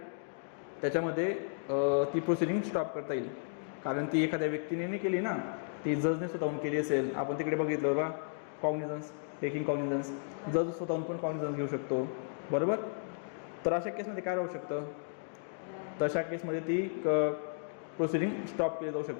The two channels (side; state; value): right; silent; digital silence